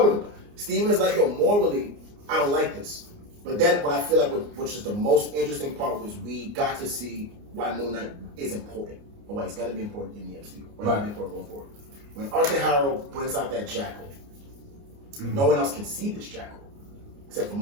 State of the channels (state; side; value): late; left; 29 ms